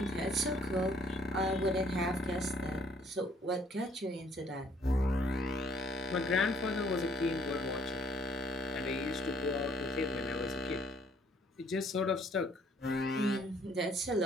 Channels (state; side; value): normal; both; correlation 0.63